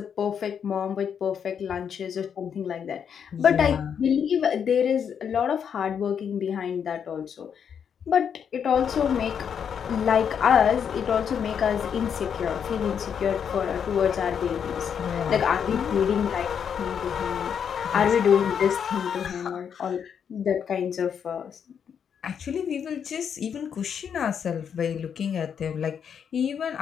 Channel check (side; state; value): right; quieter; 7.7 dB